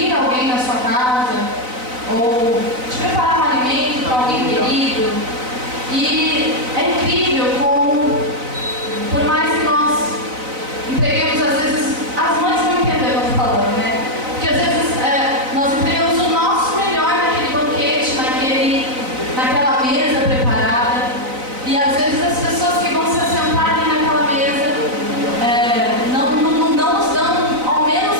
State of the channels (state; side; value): late; left; 4.0 ms